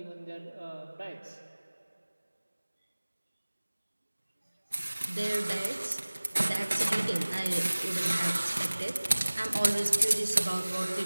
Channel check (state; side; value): inverted; both; correlation -1.00